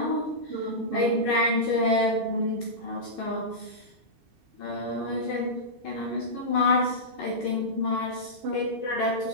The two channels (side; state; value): left; late; 2.6 ms